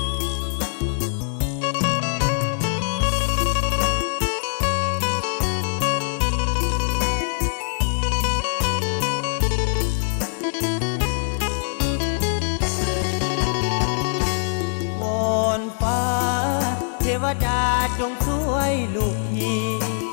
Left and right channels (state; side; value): silent; right; digital silence